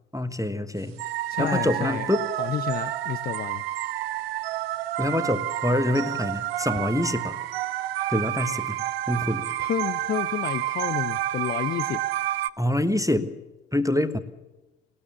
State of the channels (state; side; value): normal; both; correlation 0.44